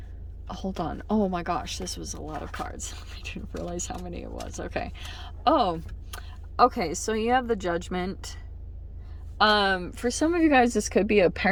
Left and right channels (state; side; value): identical; both; correlation 1.00